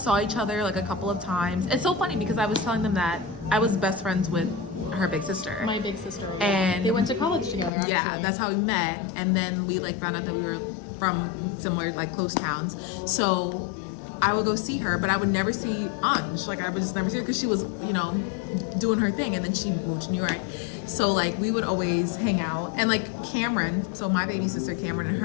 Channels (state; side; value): drops out; right; at 7.7 s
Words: each other like a couple of times. It's so funny because I was telling them that I was best friends with her big sister. My big sister. And- they went to college together. Actually. Yeah, that's how we met. And then we like found out that we were from similar like close towns. So I would go see her, but I would never see Anj. Like I would just never see her because she was, you know, doing her thing, and then she moved to New York. So like we would always hang out, and like Cameron, so my baby sister Cameron and